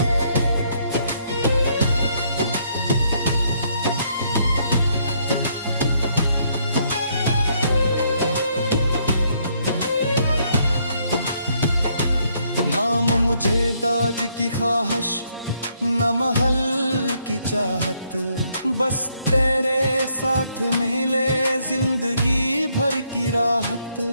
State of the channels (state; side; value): inverted; both; correlation -0.71